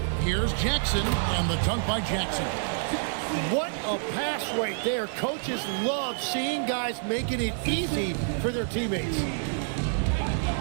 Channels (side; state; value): left; silent; 60 dB below the other